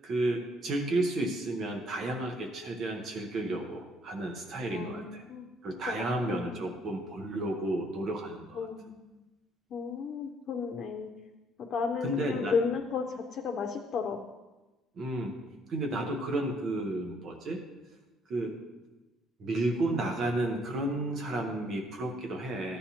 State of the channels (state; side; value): normal; both; correlation 0.65